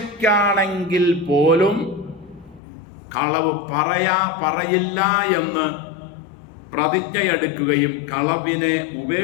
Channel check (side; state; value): right; drops out; at 2.6 s